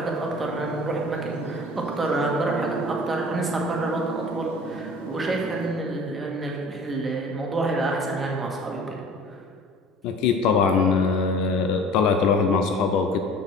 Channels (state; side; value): normal; both; correlation 0.45